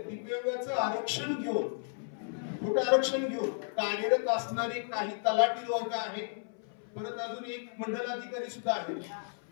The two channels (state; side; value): silent; right; 56 dB below the other